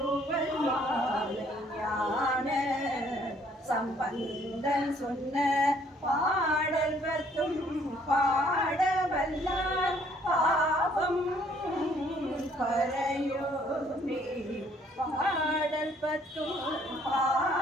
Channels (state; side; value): normal; both; correlation 0.63